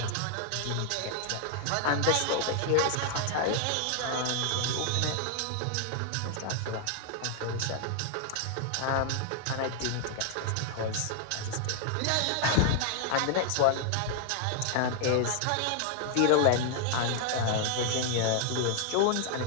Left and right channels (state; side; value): different; both; correlation 0.00